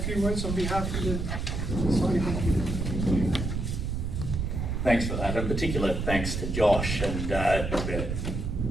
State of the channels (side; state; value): right; noise; rumble, 2 dB below the sound